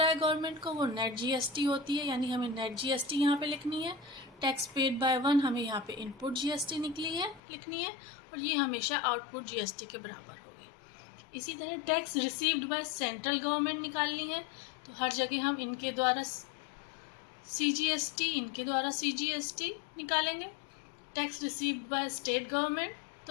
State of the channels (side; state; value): right; drops out; at 7.4 s